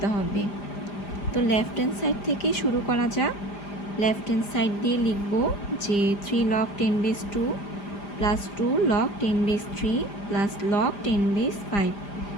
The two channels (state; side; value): late; right; 5.0 ms